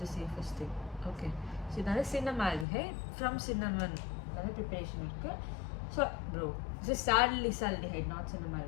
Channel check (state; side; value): drops out; right; at 2.7 s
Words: the safest thing. Okay. So இதால cinnamaldehyde from cinnamon அத preparation இருக்கு. So bro, this is salicylaldehyde, not